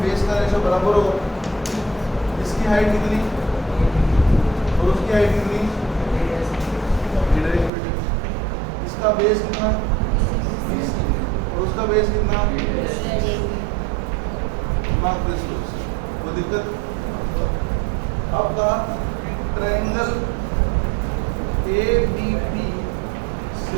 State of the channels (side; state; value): left; drops out; at 7.7 s